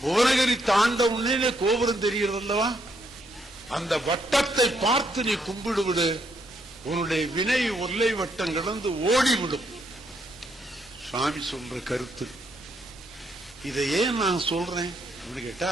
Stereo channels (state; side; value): noise; left; hum, 27 dB below the sound